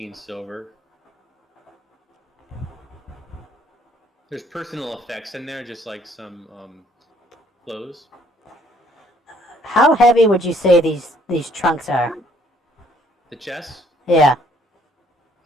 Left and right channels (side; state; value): both; normal; correlation 0.63